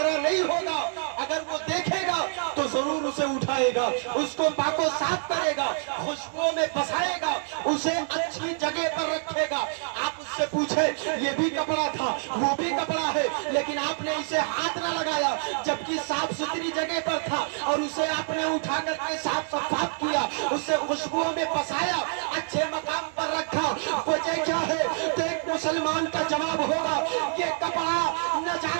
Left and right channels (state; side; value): silent; left; 60 dB below the other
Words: नहीं होगा। अगर वो देखेगा तो जरूर उसे उठाएगा, उसको पाको साफ करेगा, खुशबू में बसाएगा, उसे अच्छी जगह पर रखेगा। आप उससे पूछे ये भी कपड़ा था, वो भी कपड़ा है, लेकिन आपने इसे हाथ न लगाया जबकि साफ सुथरी जगह पर था, और उसे आपने उठा करके साफ सफाफ किया, उससे खुशबू में बसाया, अच्छे मकाम पर रखा। वजह क्या है? तो एक मुसलमान का जवाब होगा ये कपड़ा न